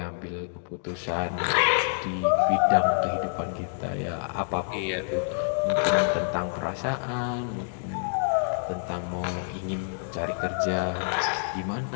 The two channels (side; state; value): right; silent; digital silence